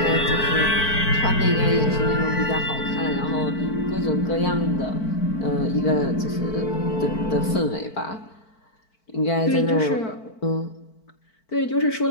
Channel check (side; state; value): right; late; 4.5 ms